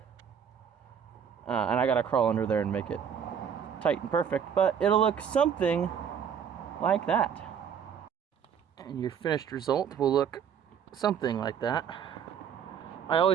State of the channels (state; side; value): quieter; left; 7.9 dB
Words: And I gotta crawl under there and make it tight and perfect, but it'll look something like that. And your finished result will look something like that. I